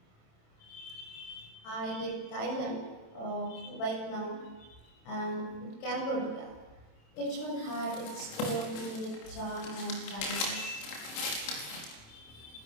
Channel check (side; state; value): right; late; 27 ms